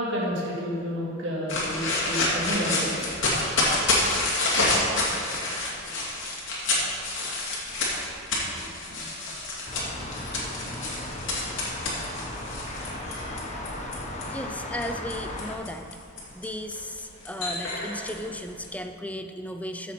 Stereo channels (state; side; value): normal; both; correlation 0.09